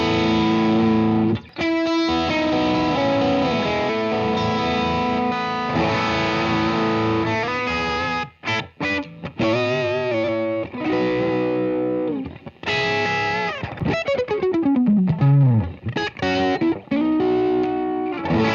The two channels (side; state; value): both; identical; correlation 1.00